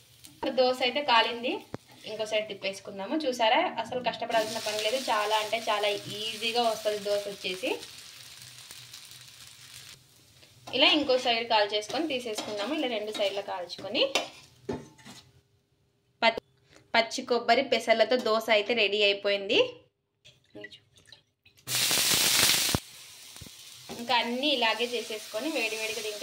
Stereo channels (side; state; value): both; identical; correlation 1.00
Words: దోశ అయితే కాలింది. ఇంకో సైడ్ తిప్పేసుకుందాము. చూసారా, అసలు కష్టపడాల్సిన పని లేదు. చాలా అంటే చాలా ఈజీగా వస్తుంది దోశ వచ్చేసి. ఇలా ఇంకో సైడ్ కాల్చేసుకొని తీసేసుకుందాము. ఇలా రెండు సైడ్ల కాల్చుకొని పచ్చి కొబ్బరి పెసర్లతో దోశ అయితే రెడీ అయిపోయింది. ఇంకా అన్నీ ఇలాగే చేసేసుకొని వేడివేడిగా